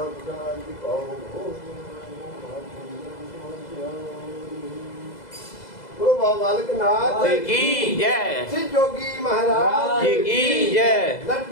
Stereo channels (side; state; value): right; late; 2.0 ms